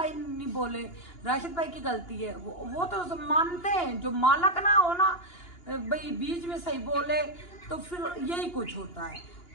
नहीं बोले, राशिद भाई की गलती है। वो तो मानते हैं, जो मालक ना हो ना भाई बीच में सही बोले तो फिर यही कुछ होता है।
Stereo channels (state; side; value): late; right; 2.9 ms